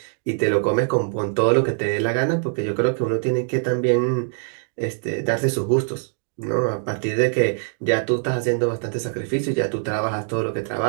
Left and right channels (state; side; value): silent; left; digital silence